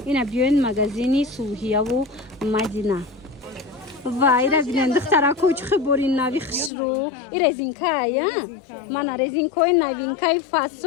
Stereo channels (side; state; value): right; drops out; at 6.7 s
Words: ина биёин магазини Сулҳияву Мадина. вайра бинен духтарако чихи бори нави хушрӯ и резинкай мана резинкои новинкаи